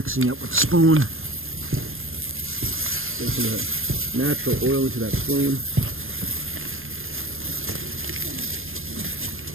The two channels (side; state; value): left; late; 0.60 ms